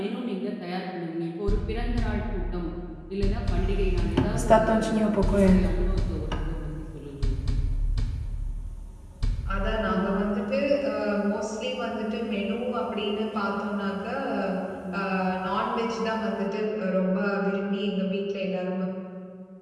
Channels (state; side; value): identical; both; correlation 1.00